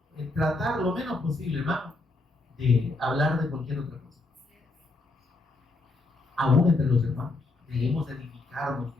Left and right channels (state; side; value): quieter; right; 3.2 dB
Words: tratar lo menos posible, hermano, de hablar de cualquier otra cosa. Aún entre los hermanos, debemos edificarnos,